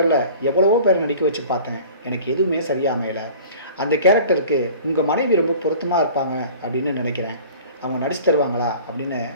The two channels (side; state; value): both; inverted; correlation -0.44